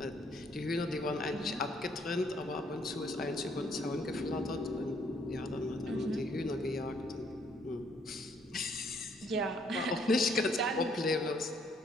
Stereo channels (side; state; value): both; normal; correlation 0.67